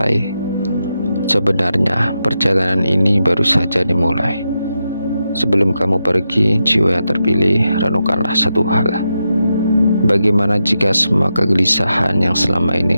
Sebenarnya perjalanan ini baru saja dimulai. Sebelum kamu pergi, jiwa yang terpilih, renungkanlah satu hal. Bagaimana jika semua kegelisahan yang selama ini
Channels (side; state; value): both; inverted; correlation -0.87